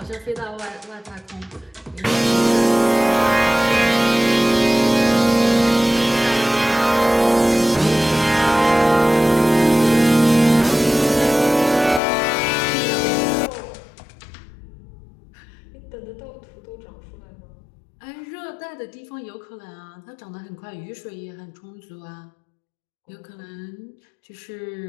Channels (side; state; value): right; drops out; at 12.0 s